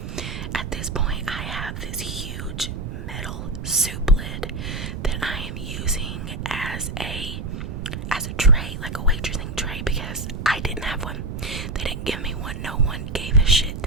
At this point, I have this huge metal soup lid that I am using as a tray, like a waitressing tray, because I didn't have one. They didn't give me one. No one gave a shit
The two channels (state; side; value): noise; right; rumble, 6 dB below the sound